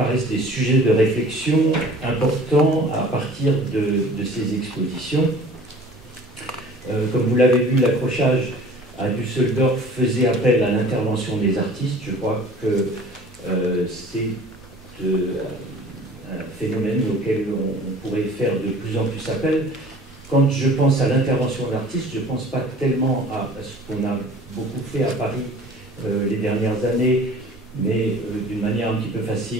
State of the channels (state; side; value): normal; both; correlation 0.47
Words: des sujets de réflexion importants à partir de ces expositions. Comme vous l'avez vu, l'accrochage à Düsseldorf faisait appel à l'intervention des artistes. Je crois que c'est un phénomène auquel on pourrait faire de plus en plus appel. Quand je pense à l'intervention d'artistes, je ne pense pas tellement à ce qu'on a beaucoup fait à Paris les dernières années, mais d'une manière un petit peu